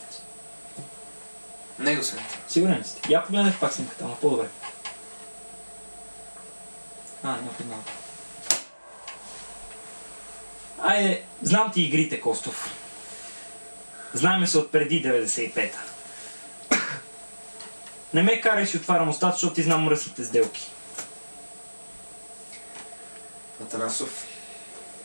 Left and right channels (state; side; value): inverted; both; correlation -1.00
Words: Него съм. Сигурен ли сте? Я погледнете пак снимката, ама по-добре. Не познавам. Айде, знам ти игрите, Костов. Знаеме се от преди 95-та. Не ме карай си отварям устата, защото ти знам мръсните сделки. Атанасов,